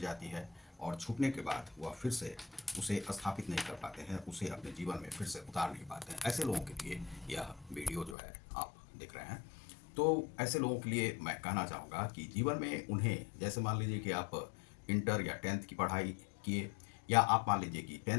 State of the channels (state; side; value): drops out; right; at 8.2 s